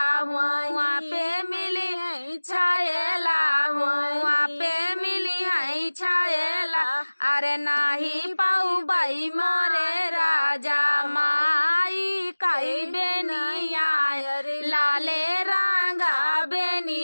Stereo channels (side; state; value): both; inverted; correlation -1.00